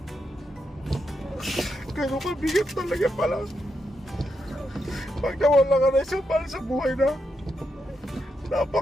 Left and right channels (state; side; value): normal; both; correlation 0.83